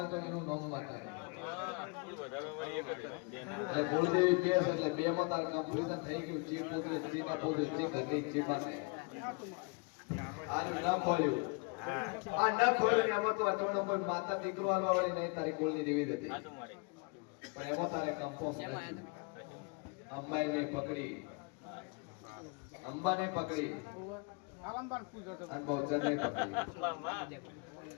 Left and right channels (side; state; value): right; quieter; 31.6 dB